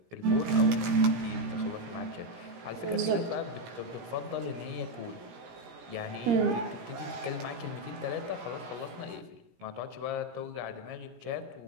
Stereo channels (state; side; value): late; left; 17 ms